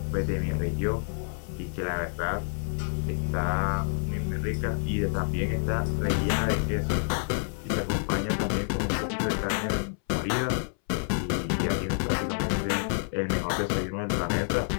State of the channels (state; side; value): silent; right; 59 dB below the other